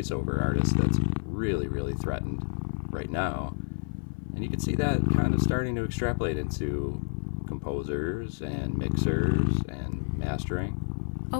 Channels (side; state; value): right; silent; 58 dB below the other